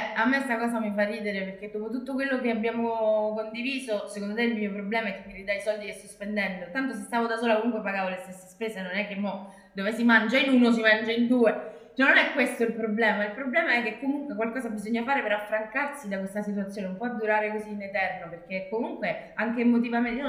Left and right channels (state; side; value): identical; both; correlation 1.00